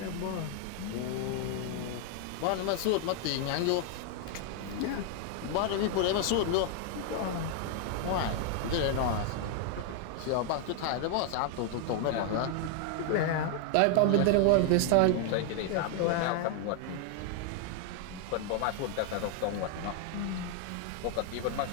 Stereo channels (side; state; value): both; different; correlation 0.00